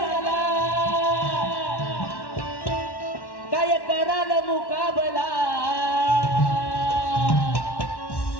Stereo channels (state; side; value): late; right; 1.1 ms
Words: काय कराल मुकाबला.